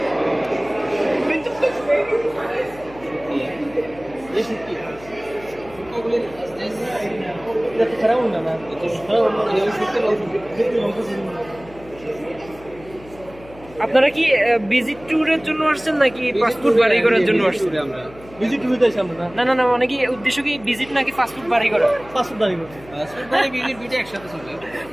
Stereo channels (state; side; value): noise; left; hum, 20 dB below the sound